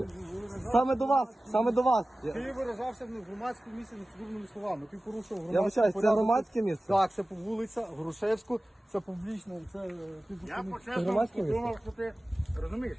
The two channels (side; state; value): both; normal; correlation 0.97